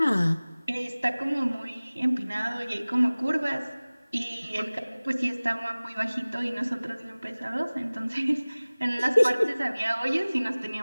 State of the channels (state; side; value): inverted; both; correlation -0.99